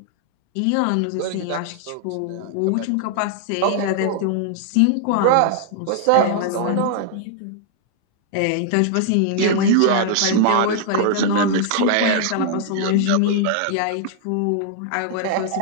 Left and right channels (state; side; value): different; both; correlation 0.00